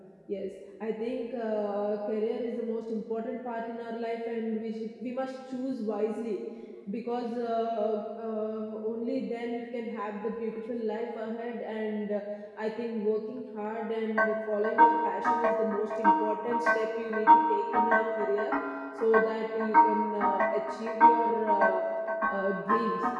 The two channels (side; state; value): both; identical; correlation 1.00